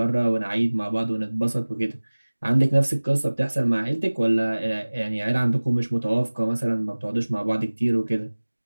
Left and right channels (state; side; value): inverted; both; correlation -1.00